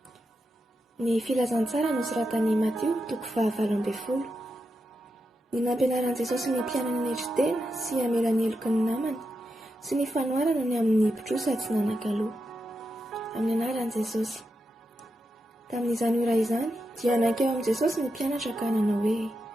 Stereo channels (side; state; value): both; normal; correlation 0.87